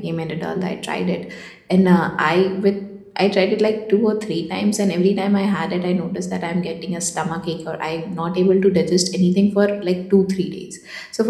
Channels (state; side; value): identical; both; correlation 1.00